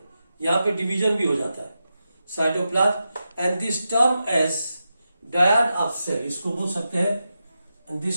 यहां पे डिवीजन भी हो जाता है, cytoplasm. And this term as dyad of cell, इसको बोल सकते हैं, एंड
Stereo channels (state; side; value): inverted; both; correlation -0.89